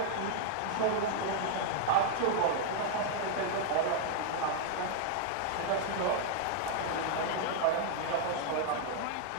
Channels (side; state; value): both; different; correlation -0.01